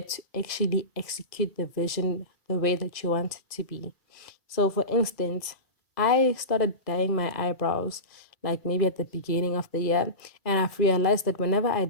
to actually execute the vision the way that you want it to be. So for instance, I started dyeing my eyebrows like maybe at the beginning of the year, and I've realized that whenever I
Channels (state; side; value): late; right; 1.9 ms